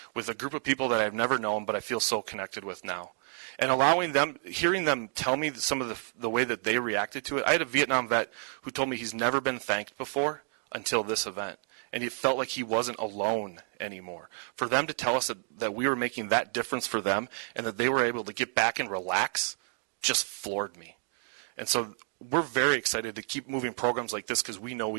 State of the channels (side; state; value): left; silent; 57 dB below the other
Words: with a group of people that I've never known, but I feel so connected with now. And hearing them tell me some of the way that they reacted to it. I had a Vietnam vet who told me he's never been thanked before until this event. And he felt like he wasn't alone anymore. For them to tell us that we were making that difference for them and that they were able to get back and relax just floored me. And so we're very excited to keep moving programs like this because we know